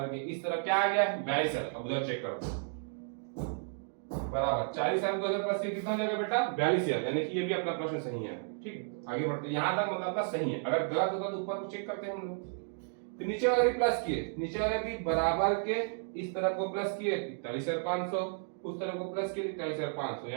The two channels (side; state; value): left; silent; 56 dB below the other